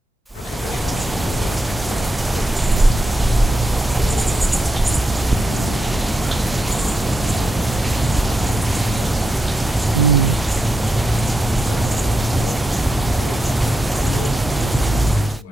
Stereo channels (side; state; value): both; normal; correlation 0.84